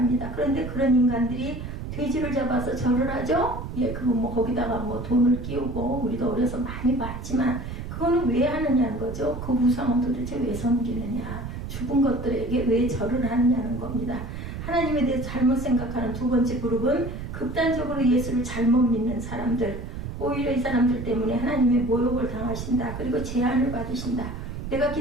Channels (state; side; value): noise; right; rumble, 7 dB below the sound